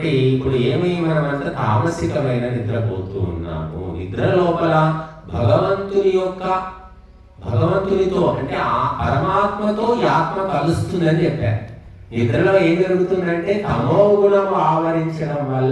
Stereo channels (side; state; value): both; identical; correlation 1.00